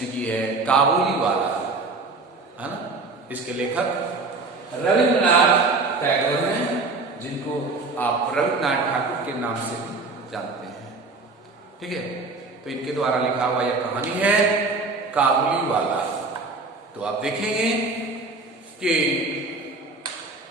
की है काबुली वाला, है ना। इसके लेखक रविंद्रनाथ टैगोर हैं, जिनको आप रविंद्रनाथ ठाकुर के नाम से जानते हैं। ठीक है, तो इनके द्वारा लिखा हुआ यह कहानी है काबुली वाला। तो आप देखेंगे कि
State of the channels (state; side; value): quieter; left; 3.7 dB